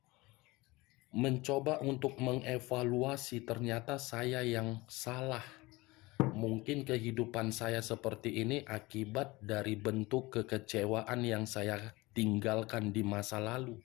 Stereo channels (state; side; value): quieter; right; 21.9 dB